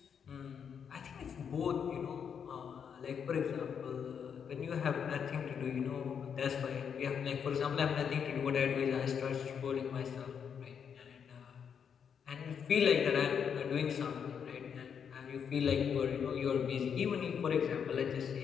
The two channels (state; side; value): quieter; right; 7.4 dB